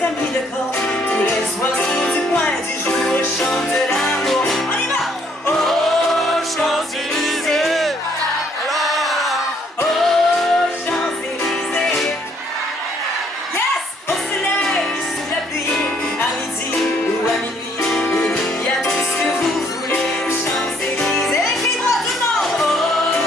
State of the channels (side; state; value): both; normal; correlation 0.66